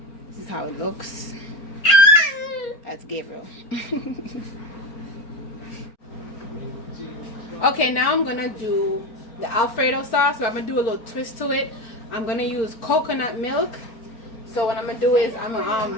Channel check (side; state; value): right; late; 4.4 ms